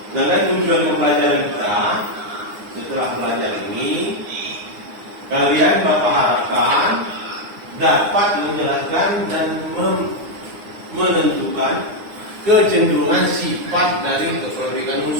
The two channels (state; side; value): late; left; 9.8 ms